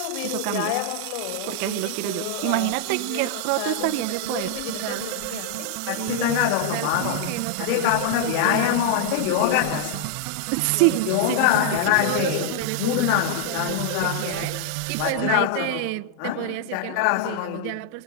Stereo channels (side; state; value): both; different; correlation -0.01